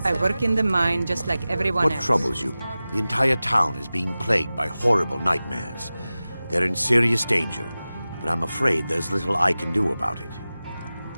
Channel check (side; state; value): both; inverted; correlation -0.96